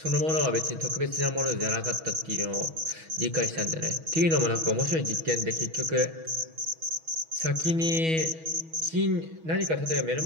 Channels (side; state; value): left; late; 6.2 ms